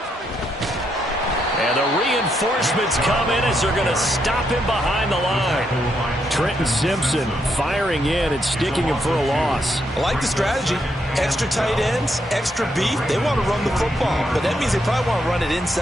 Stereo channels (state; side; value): normal; both; correlation 0.78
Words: And the reinforcements come in as they're going to stop him behind the line. Trenton Simpson firing in and sticking him for a loss. I like the strategy. Extra tight ends, extra beef. They want to run the football, but that means they probably want to run it